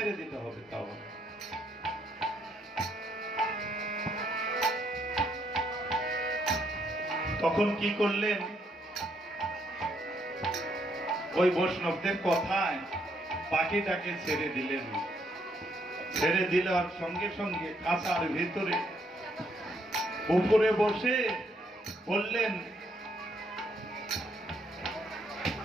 দিতে হবে। তাও তখন কি করলেন, ওই বৈষ্ণবদের কথায় পাখিটাকে ছেড়ে দিলেন। ছেড়ে দেওয়ার সঙ্গে সঙ্গে খাঁচার ভিতরে উপরে বসে বললেন,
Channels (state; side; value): normal; both; correlation 0.72